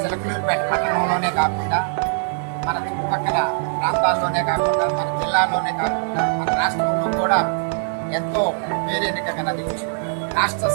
చిలకలూరిపేట పట్టణంలోనే కాకుండా మన చుట్టుపక్కల ప్రాంతాల్లోనే కాకుండా మన జిల్లాలోనే కాకుండా మన రాష్ట్రంలో కూడా ఎంతో పేరెన్నికగలది. రాష్ట్ర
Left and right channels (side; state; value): left; silent; 64 dB below the other